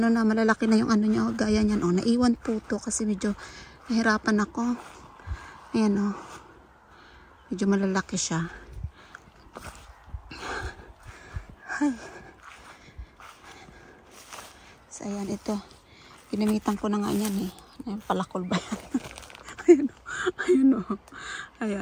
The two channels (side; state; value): both; identical; correlation 1.00